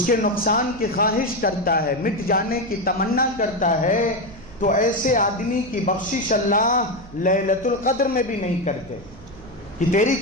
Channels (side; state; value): right; noise; hum, 20 dB below the sound